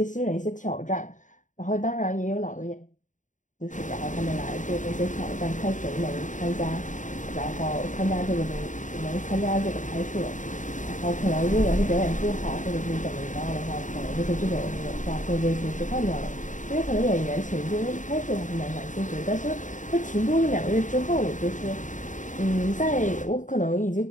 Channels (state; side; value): late; right; 0.37 ms